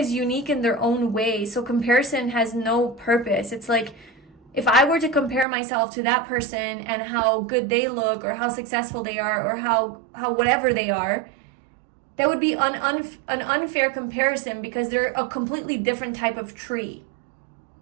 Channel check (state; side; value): drops out; left; at 5.5 s